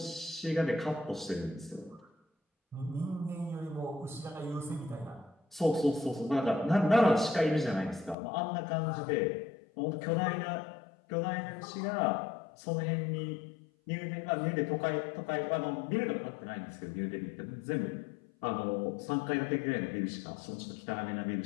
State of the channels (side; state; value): right; drops out; at 8.2 s